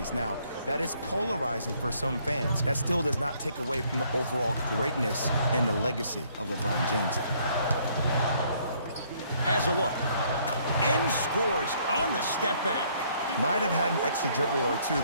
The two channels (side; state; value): both; inverted; correlation -0.65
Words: Now, that is polarizing for some fans. That still does not take away from the overall greatness and the legacy of LeBron James. Has a look. And scores on the step back. Might have had an extra dribble or 2